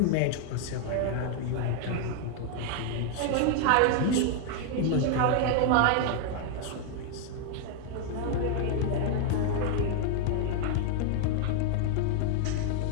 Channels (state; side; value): different; both; correlation 0.00